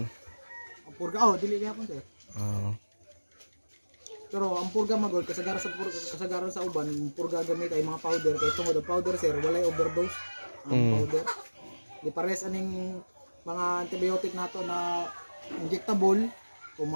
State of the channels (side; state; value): both; inverted; correlation -1.00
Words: Ang purga dili gyapon sir. Pero ang purga magol kasagaran sa uban, purga gamit ay mga powder kay tungod ang powder sir walay overdose ang powder. Di pares aning mga antibiotic nato na injectable kung